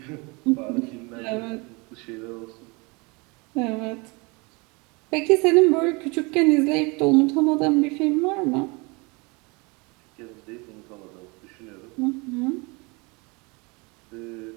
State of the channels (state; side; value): quieter; left; 28.0 dB